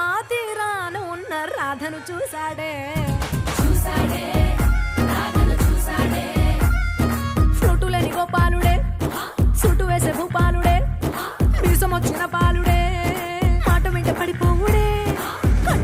తీరాన ఉన్న రాధను చూసాడే చూసాడే రాధను చూసాడే ఫ్రూటులని గోపాలుడే సుటు వేసే భూపాలుడే మీసం వచ్చిన పాలుడే మాట వెంట పడిపోవుడే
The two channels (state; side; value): identical; both; correlation 1.00